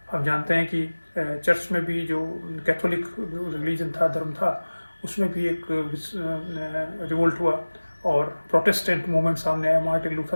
हम जानते हैं कि चर्च में भी जो कैथोलिक रिलीजन था, धर्म था, उसमें भी एक रिवोल्ट हुआ और प्रोटेस्टेंट मूवमेंट सामने आया। मार्टिन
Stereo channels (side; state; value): both; inverted; correlation -1.00